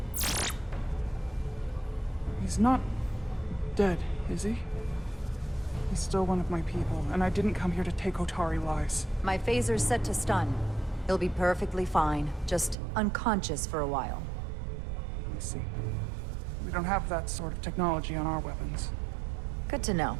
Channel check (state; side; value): drops out; left; at 12.8 s